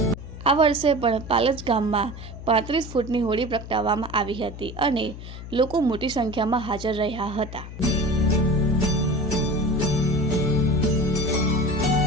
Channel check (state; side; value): noise; left; hum, 12 dB below the sound